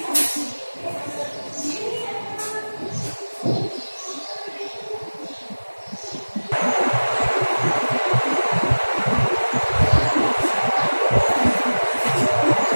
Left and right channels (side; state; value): both; inverted; correlation -1.00